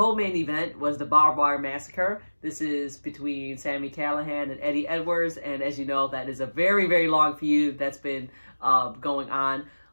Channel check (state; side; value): inverted; both; correlation -1.00